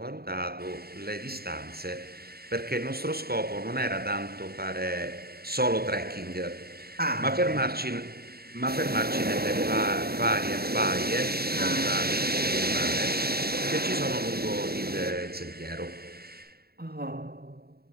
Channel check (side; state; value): left; late; 0.45 ms